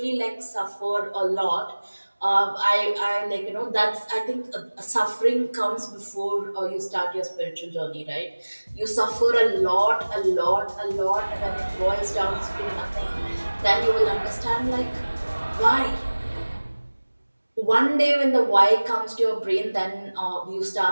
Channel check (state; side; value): inverted; both; correlation -1.00